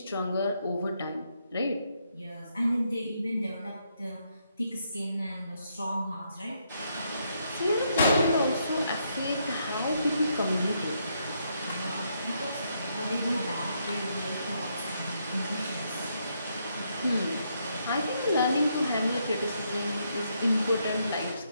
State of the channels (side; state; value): both; inverted; correlation -0.76